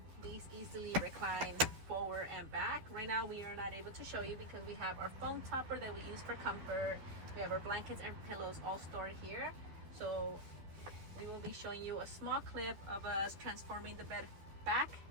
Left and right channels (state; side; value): late; left; 12 ms